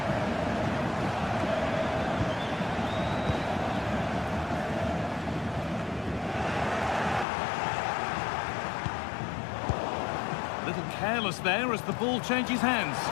A little careless there as the ball changes hands.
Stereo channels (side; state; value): right; drops out; at 7.2 s